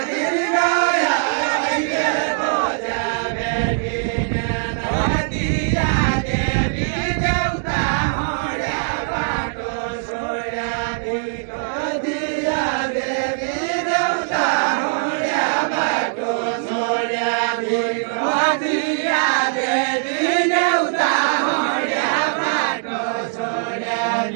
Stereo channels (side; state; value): left; silent; digital silence